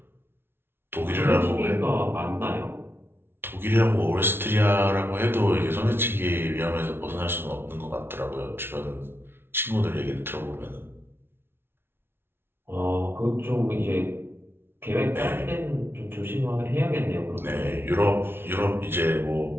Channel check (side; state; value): left; late; 0.11 ms